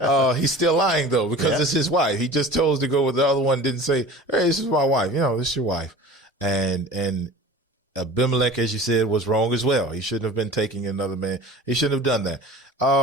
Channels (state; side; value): normal; both; correlation 0.40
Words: He's still lying though, because it's his wife. He just chose to go with the other one. Didn't say, "Hey, this is my wife." This is your wife. And Abimelech, as you said, was wrong as well. He shouldn't have been taking another man. He shouldn't have done that.